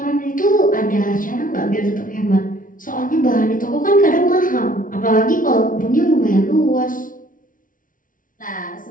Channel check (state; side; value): late; right; 0.39 ms